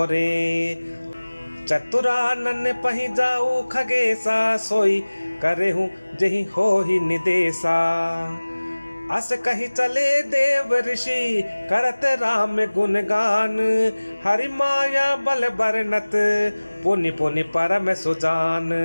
चतुरानन पहि जाऊ खगेसा, सोई करेहूँ जही हो ही निदेशा। अस कही चले देव ऋषि करत राम गुणगान, हरि माया बल बरनत पुनि पुनि परम सुजान।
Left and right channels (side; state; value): both; inverted; correlation -1.00